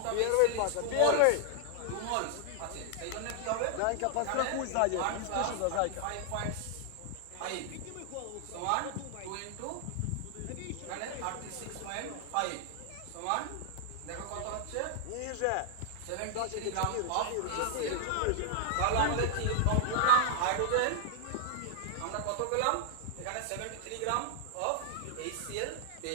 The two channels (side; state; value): both; different; correlation 0.00